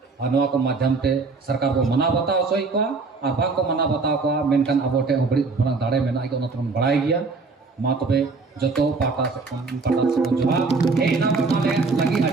और नवा को माध्यम ते सरकार को मना बताओ सोई को और भाग को मना बताओ को मेनकान अबोटे अबड़ी बना दाड़े मेना के ओना तुम बड़ाई गया मा तबे जतो पाटा से जोहा हे ना माने लगी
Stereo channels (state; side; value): quieter; left; 4.2 dB